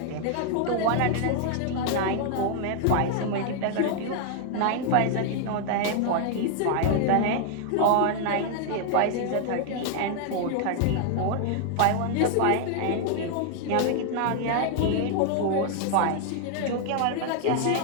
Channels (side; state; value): both; different; correlation 0.00